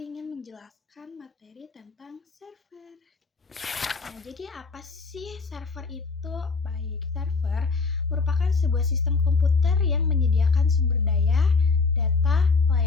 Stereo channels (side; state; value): right; quieter; 4.4 dB